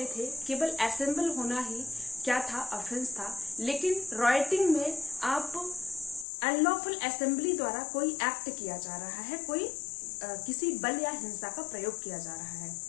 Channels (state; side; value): drops out; right; at 6.2 s